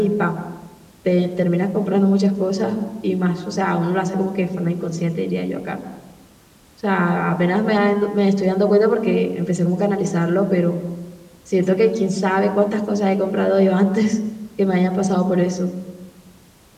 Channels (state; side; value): identical; both; correlation 1.00